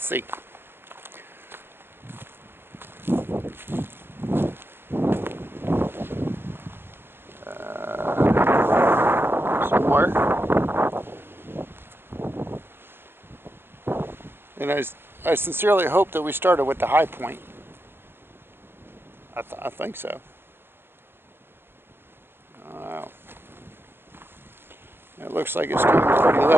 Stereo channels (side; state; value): left; late; 0.11 ms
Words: see. Somewhere. And I sincerely hope that we started with the high point. I think so. Wow. It looks like it's coming pretty